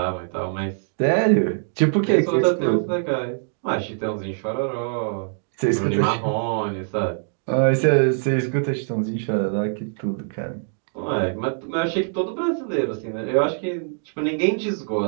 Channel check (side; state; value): left; silent; digital silence